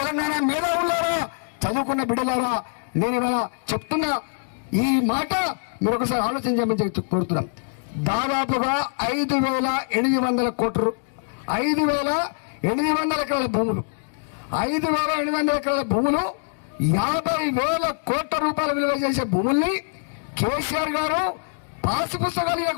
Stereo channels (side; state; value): right; silent; 63 dB below the other